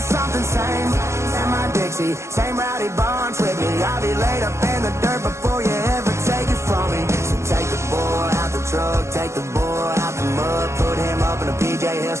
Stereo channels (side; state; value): left; late; 0.13 ms